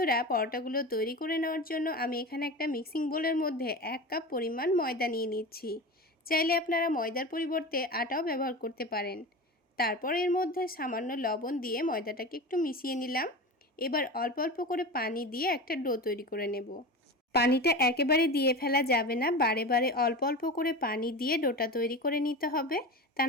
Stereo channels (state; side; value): normal; both; correlation 0.29